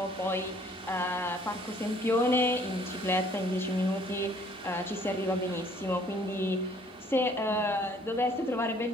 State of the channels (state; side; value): normal; both; correlation 0.59